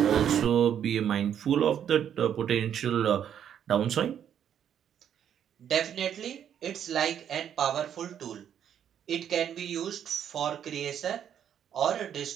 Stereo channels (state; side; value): quieter; left; 9.2 dB